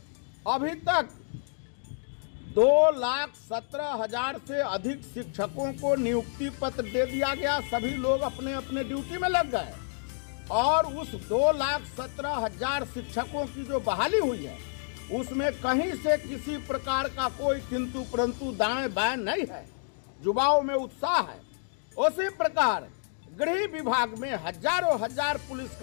अभी तक 2,17,000 से अधिक शिक्षकों को नियुक्ति पत्र दे दिया गया। सभी लोग अपने अपने ड्यूटी में लग गए और उस 2,17,000 शिक्षकों की जो बहाली हुई है उसमें कहीं से किसी प्रकार का कोई किंतु परंतु दाएं बाएं नहीं है। युवाओं में उत्साह है। उसी प्रकार गृह विभाग में हजारों हजार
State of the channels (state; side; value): silent; right; digital silence